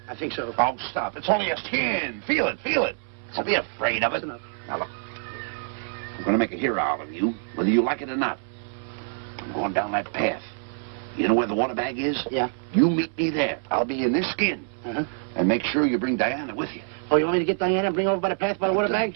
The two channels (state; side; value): silent; left; 61 dB below the other